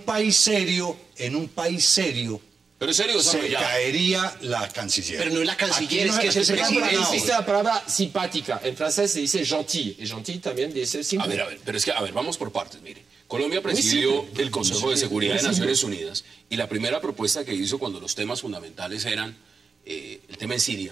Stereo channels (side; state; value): left; quieter; 5.0 dB